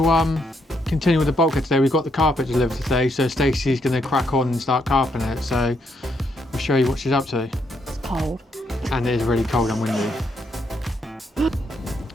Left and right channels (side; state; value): both; normal; correlation 0.76